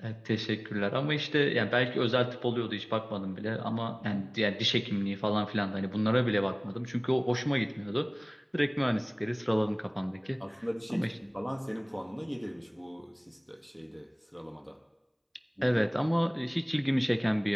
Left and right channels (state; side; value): identical; both; correlation 1.00